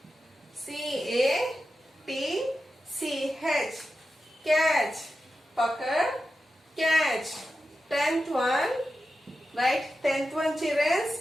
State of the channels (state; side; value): normal; both; correlation 0.91